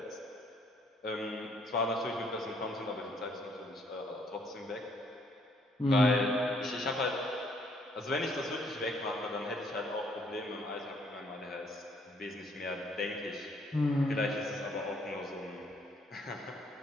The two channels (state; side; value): normal; both; correlation 0.66